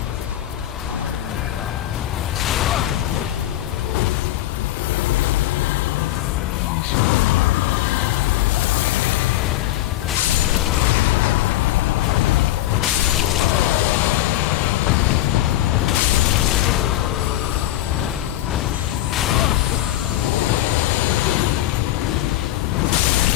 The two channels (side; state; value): right; quieter; 14.4 dB